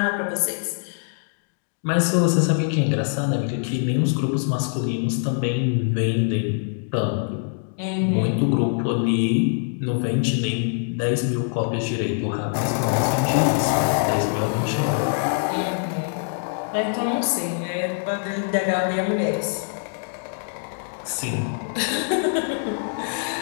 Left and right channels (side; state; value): right; silent; digital silence